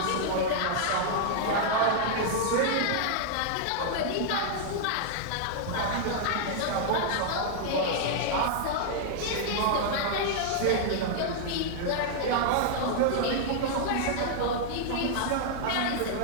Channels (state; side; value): different; both; correlation -0.01